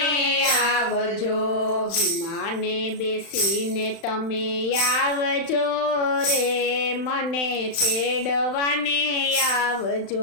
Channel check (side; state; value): right; late; 35 ms